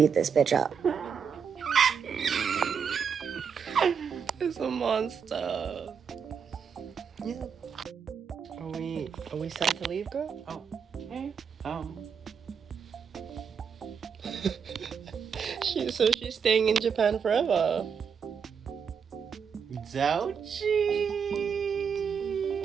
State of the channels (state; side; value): quieter; left; 6.7 dB